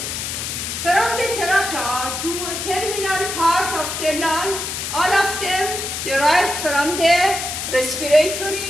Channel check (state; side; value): noise; left; hiss, 4 dB below the sound